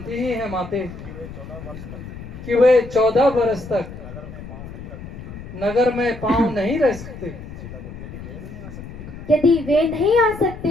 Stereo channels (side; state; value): left; noise; rumble, 12 dB below the sound